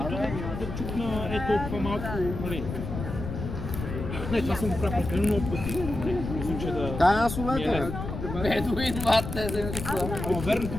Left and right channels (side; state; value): left; noise; rumble, 6 dB below the sound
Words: да чукна толкова малко, нали. Не, това съм го правил прекалено много пъти. Мисля, че да... Аз ми е улета, бе. лесно. Бедуин, мате, вземете Ама верно,